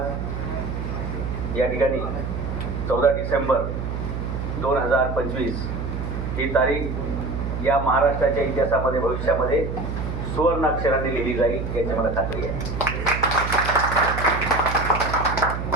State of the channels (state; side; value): noise; right; hum, 4 dB below the sound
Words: या ठिकाणी 14 डिसेंबर 2025 ही तारीख या महाराष्ट्राच्या इतिहासामध्ये भविष्यामध्ये सुवर्ण अक्षरांनी लिहिली जाईल याची मला खात्री आहे.